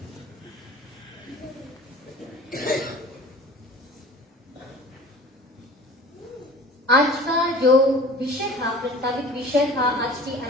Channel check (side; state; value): both; normal; correlation 0.43